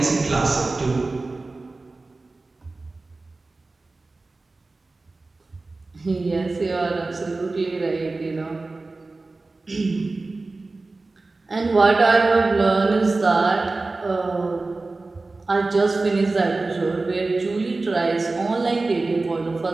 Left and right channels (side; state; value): left; quieter; 3.4 dB